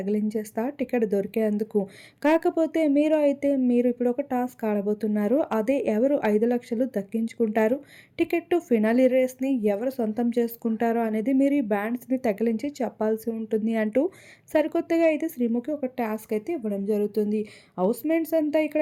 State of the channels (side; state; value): both; identical; correlation 1.00